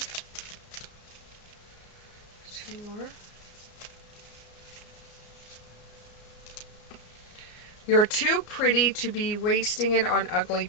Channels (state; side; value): late; right; 34 ms